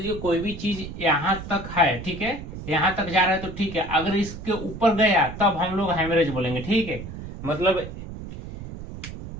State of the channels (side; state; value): right; noise; rumble, 10 dB below the sound